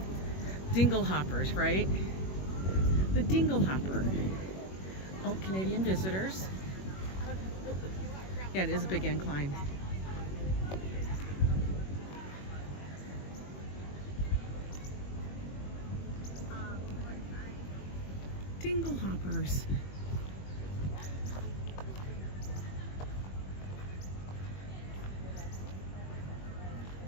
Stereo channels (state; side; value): late; right; 21 ms